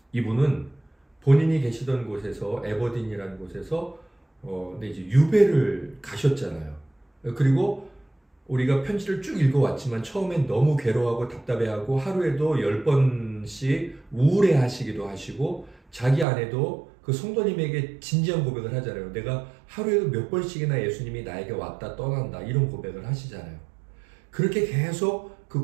이분은 본인이 계시던 곳에서 에버딘이라는 곳에서 이제 유배를 가셨잖아요. 그리고 우리가 편지를 쭉 읽어왔지만 처음엔 너무 괴로워하고 답답해하고 하루에도 10번씩 우울해하시기도 하시고 자기 아내도 그 성도님에게 진지한 고백을 하잖아요. 내가 하루에도 몇 번씩이나 예수님이 나에게 왔다 떠난다 이런 고백을 하시잖아요. 그렇게 계속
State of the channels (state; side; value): drops out; left; at 16.2 s